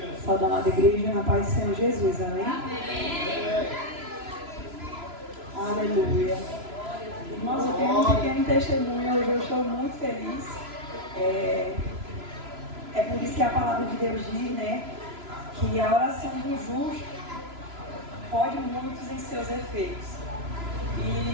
Saúde, amada igreja, na paz do Senhor Jesus, amém? Aleluia. Irmãos, eu tenho um pequeno testemunho, hoje eu estou muito feliz. É por isso que a palavra de Deus diz, né, que a oração do justo pode muitos em seus efeitos.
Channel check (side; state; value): left; late; 3.0 ms